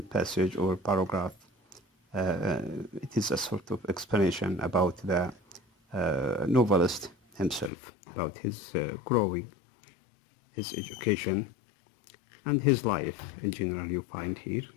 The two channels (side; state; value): right; drops out; at 7.7 s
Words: passage or paragraph. It is a sort of explanation about the novelist himself, about his growing, his education, and his life in general you find here.